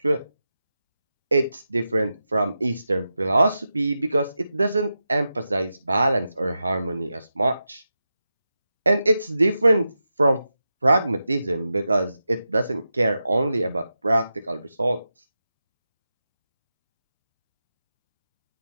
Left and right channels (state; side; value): inverted; both; correlation -0.90